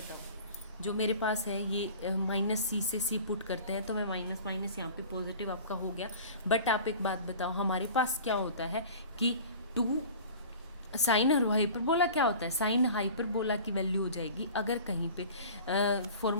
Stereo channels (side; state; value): both; inverted; correlation -0.41